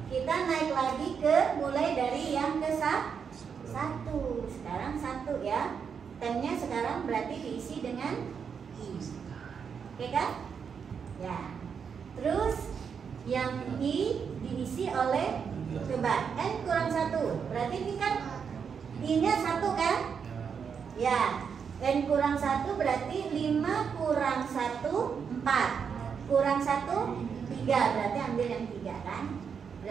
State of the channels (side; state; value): left; quieter; 6.6 dB